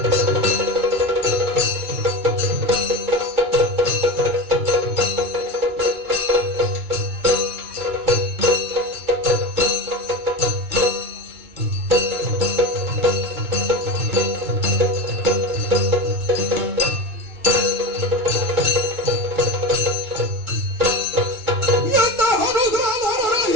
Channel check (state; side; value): late; left; 2.3 ms